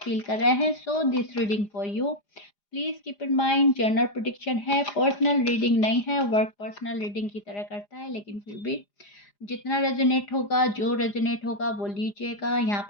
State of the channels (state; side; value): late; right; 4.9 ms